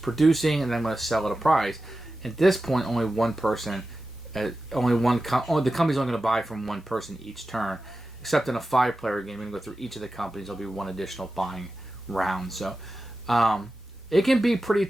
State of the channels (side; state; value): both; normal; correlation 0.93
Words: producing and then going to sell at a price. At this point, only one person, the company's only going to buy from one person each turn. Except in a 5-player game, you're going to go through each of the companies. There'll be one additional buying round. So it can be pretty